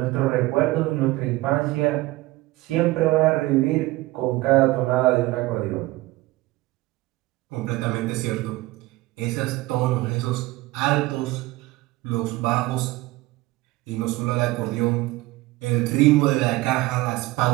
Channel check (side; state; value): left; quieter; 19.6 dB